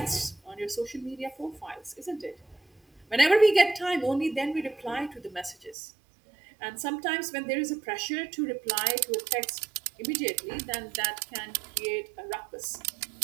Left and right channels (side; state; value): left; drops out; at 5.8 s